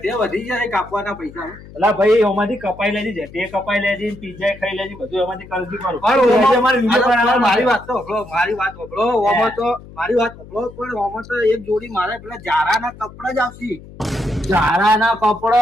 વધી જાય કાપવાના પૈસા. એટલે ભાઈ એમાંથી કપાઈ લેજે, જેટી કપાઈ લેજે, પિઝા ખાઈ લેજે, બધું એમાંથી કરતી કરું. મારી વાત તો સાંભળો, મારી વાત સાંભળો. ઓમાં તો મારી વાત સાંભળો, પણ ઓમાં તો એક જોડી મારે પેલા જારાના કપડા જ આવશે. ઝારાના કપડો,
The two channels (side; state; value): left; noise; hum, 18 dB below the sound